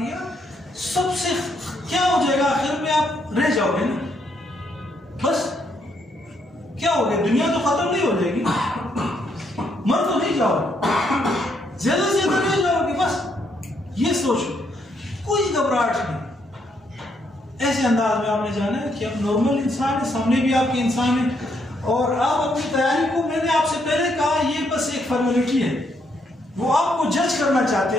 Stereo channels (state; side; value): normal; both; correlation 0.74